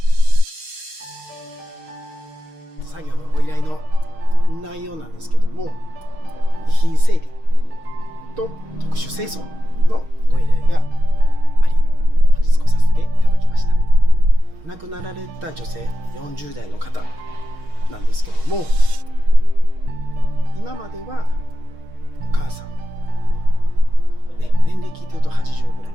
作業のご依頼の内容なんですけども、遺品整理と特殊清掃のご依頼があり、本日来させていただきました。亡くなられた女性40代の方なんですけども、今まではお母さん、年齢聞いてると80ぐらい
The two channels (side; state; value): left; late; 6.4 ms